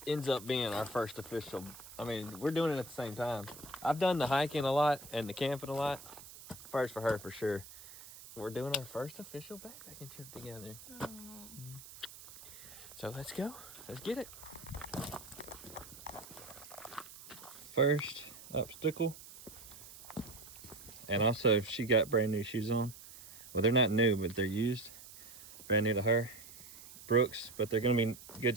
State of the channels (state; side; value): noise; right; hiss, 16 dB below the sound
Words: ends up being our first official. I mean, we're doing it at the same time. I've done the hiking a lot and the camping a lot. First for her, for sure. We're doing our first official backpacking trip together. So let's go. Let's get it. First obstacle. And also, she got brand new shoes on. Well, they're not new, but they're used. Brand new to her. Brooks, but they're gonna be good